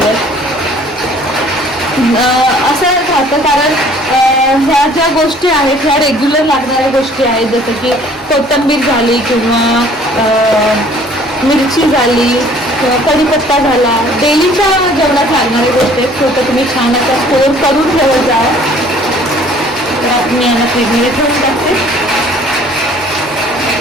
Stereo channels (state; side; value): normal; both; correlation 0.55